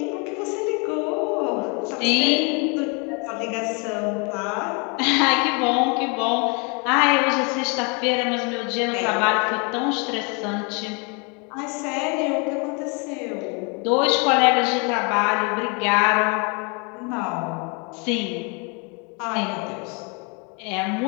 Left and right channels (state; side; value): quieter; right; 33.1 dB